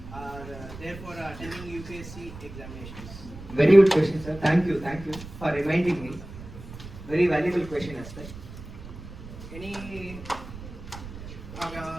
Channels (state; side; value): noise; right; rumble, 13 dB below the sound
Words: are there for attending UPSC examinations? Very good question, sir. Thank you for reminding me. Very valuable question as well. Any